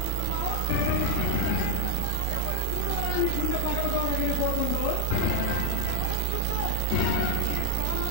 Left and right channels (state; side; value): different; both; correlation 0.00